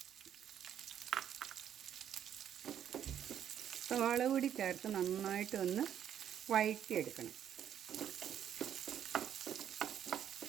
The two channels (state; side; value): quieter; left; 9.7 dB